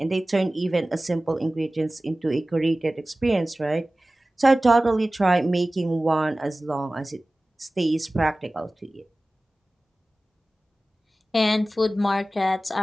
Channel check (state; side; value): normal; both; correlation 0.97